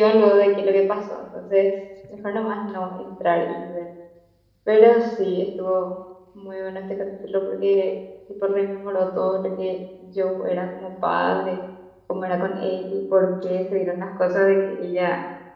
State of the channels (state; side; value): identical; both; correlation 1.00